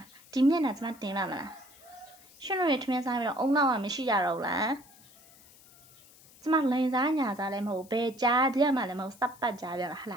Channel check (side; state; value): left; noise; hiss, 24 dB below the sound